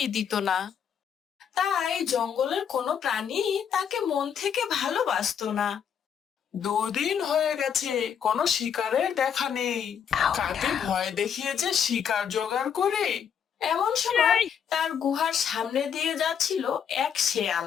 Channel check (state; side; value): quieter; right; 7.9 dB